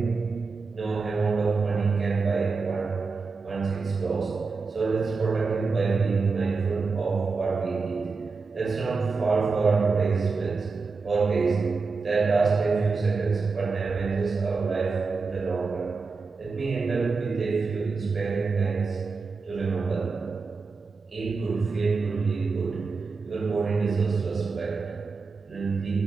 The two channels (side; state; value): left; quieter; 4.5 dB